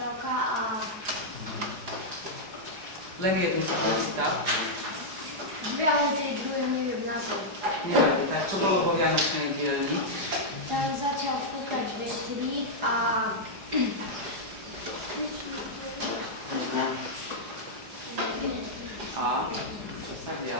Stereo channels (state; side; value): late; left; 4.9 ms